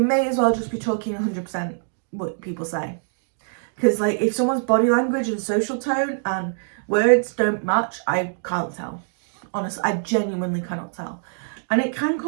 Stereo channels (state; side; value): silent; left; digital silence